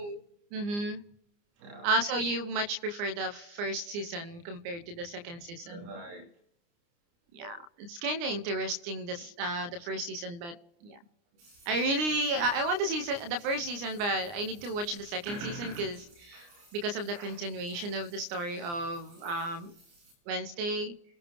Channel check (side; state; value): left; late; 29 ms